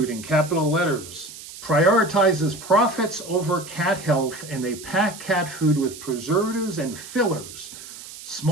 in capital letters prioritizes profits over cat health, and they pack cat food with preservatives and fillers.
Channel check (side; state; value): right; noise; hiss, 14 dB below the sound